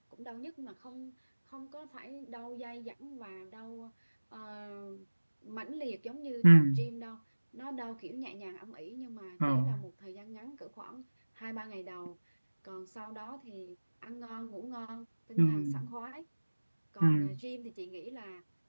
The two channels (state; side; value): inverted; both; correlation -1.00